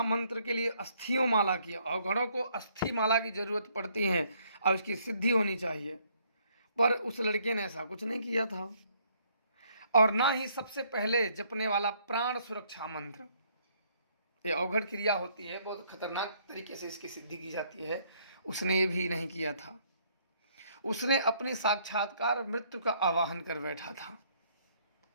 मंत्र के लिए अस्थियों माला की, अवघड़ों को अस्थि माला की जरूरत पड़ती है और उसकी सिद्धि होनी चाहिए। पर उस लड़के ने ऐसा कुछ नहीं किया था, और ना ही सबसे पहले जपने वाला प्राण सुरक्षा मंत्र, ये अवघड़ क्रिया होती है, बहुत खतरनाक तरीके से इसकी सिद्धि की जाती है, उसने ये भी नहीं किया था। उसने अपनी साक्षात्कार मृत्यु का आवाहन कर बैठा था।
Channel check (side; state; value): both; inverted; correlation -0.67